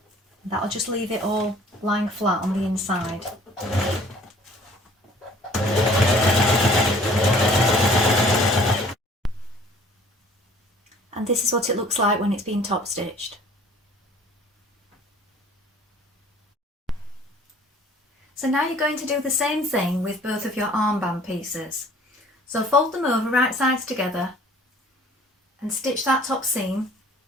That'll just leave it all lying flat on the inside. And this is what it looks like when it's been top stitched. So now you're going to do the same thing with both of your armband pieces. So fold them over right sides together and stitch that top seam,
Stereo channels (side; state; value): both; normal; correlation 0.53